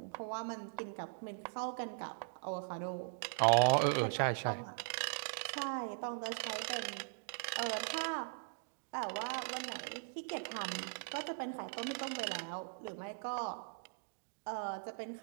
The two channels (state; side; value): silent; left; digital silence